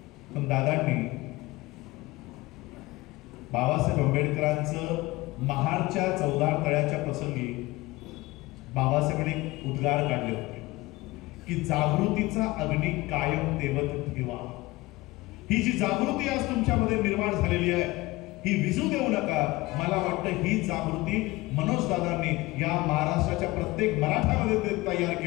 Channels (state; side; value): quieter; right; 20.6 dB